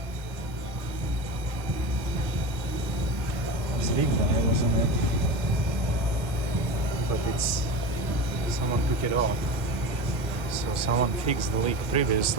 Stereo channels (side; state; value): both; normal; correlation 0.27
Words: This leak guy wasn't it? But it's someone took it off. So someone fixed the leak